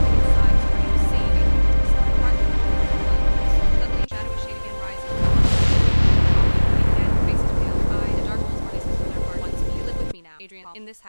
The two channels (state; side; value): inverted; both; correlation -1.00